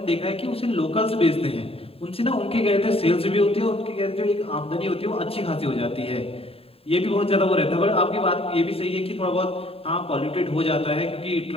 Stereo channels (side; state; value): right; late; 0.27 ms